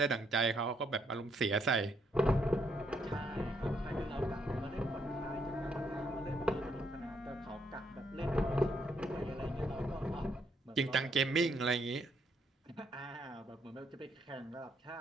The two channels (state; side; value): normal; both; correlation 0.74